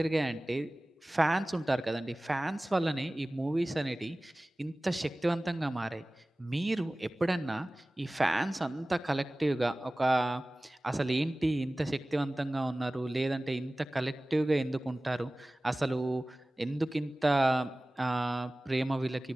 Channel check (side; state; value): both; normal; correlation 0.98